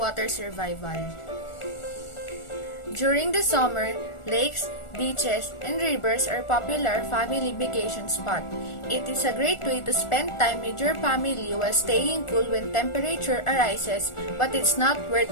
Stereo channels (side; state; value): right; late; 1.4 ms